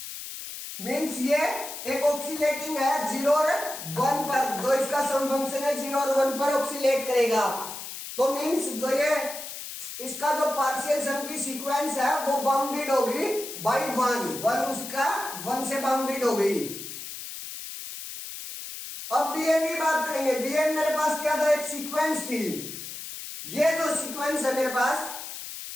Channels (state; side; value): noise; left; hiss, 9 dB below the sound